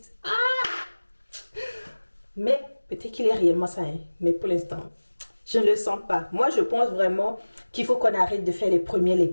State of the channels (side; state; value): both; inverted; correlation -1.00